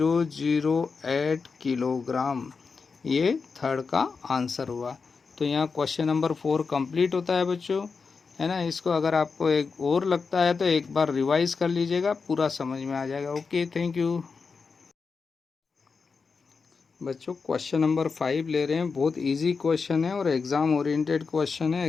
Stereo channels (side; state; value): right; quieter; 5.0 dB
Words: किलोग्राम। ये थर्ड का आंसर हुआ। तो यहाँ क्वेश्चन नंबर 4 कंप्लीट होता है बच्चों, है ना। इसको अगर आपको एक और लगता है तो एक बार रिवाइज कर लीजिएगा, पूरा समझ में आ जाएगा। Okay, thank you. बच्चों क्वेश्चन नंबर 5 ले रहे हैं। बहुत इजी क्वेश्चन है और एग्ज़ाम ओरिएंटेड क्वेश्चन है।